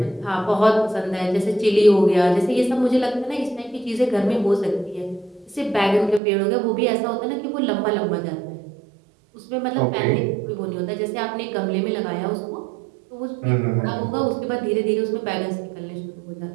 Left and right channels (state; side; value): drops out; left; at 6.2 s